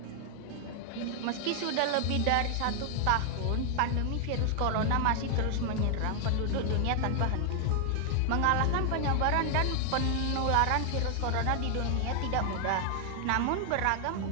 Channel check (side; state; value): both; different; correlation 0.00